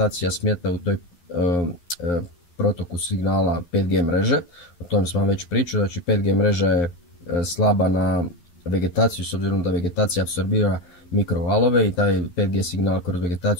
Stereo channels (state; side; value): late; right; 11 ms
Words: smeta u toj protoku signala 5G mreže. O tom sam vam već pričao, znači 5G mreža je slaba na vegetaciju, s obzirom da vegetacija apsorbira mikrovalove i taj 5G signal kroz